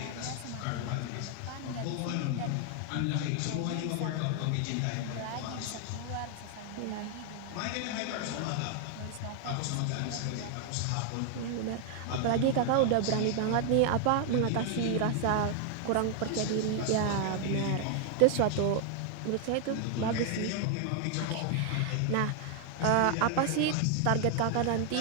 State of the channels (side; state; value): both; different; correlation 0.00